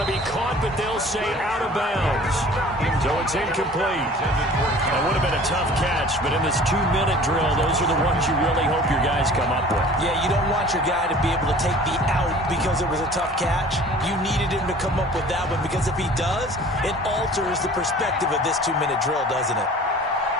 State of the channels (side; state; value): both; normal; correlation 0.47